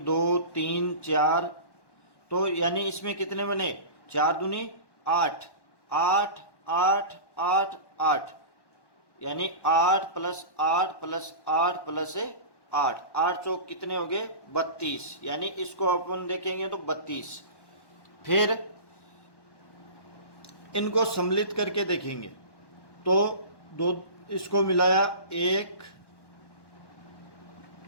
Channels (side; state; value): right; late; 1.1 ms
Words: 2 3 4, तो यानी इसमें कितने बने 4 दूनी 8, 8 8 8 8, यानी 8 प्लस 8 प्लस 8 प्लस 8, 8 चौक कितने हो गए 32, यानी इसको अपन देखेंगे तो 32। फिर इनको सम्मिलित करके देखेंगे तो दो, इसको मिलाया 1,